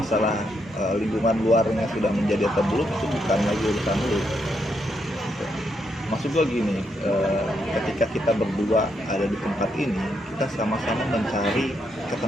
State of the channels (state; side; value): normal; both; correlation 0.79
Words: lingkungan luarnya sudah menjadi atau belum itu bukan lagi urusan lu. Maksud gua gini, ketika kita berdua ada di tempat ini, kita sama-sama mencari